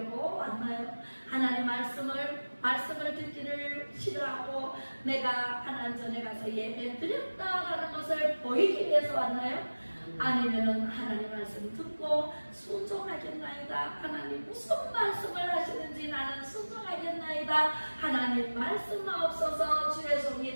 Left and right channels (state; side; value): inverted; both; correlation -1.00